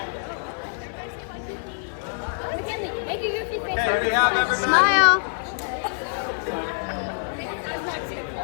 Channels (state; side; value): silent; right; digital silence